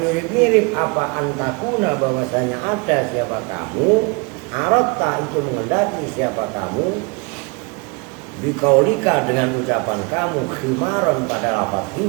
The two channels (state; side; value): quieter; left; 29.9 dB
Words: apa antakuna bahwasanya ada siapa kamu aratta itu mengendaki siapa kamu bikaulika dengan ucapan kamu khimaron pada lafaz